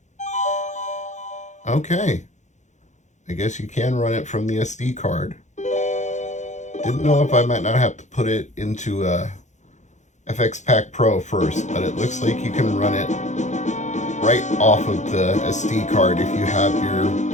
Okay. I guess you can run it from the SD card. Didn't know if I might not have to put it into FX Pack Pro first, but it looks like you can run it right off of the SD card if you have your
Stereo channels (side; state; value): right; late; 0.34 ms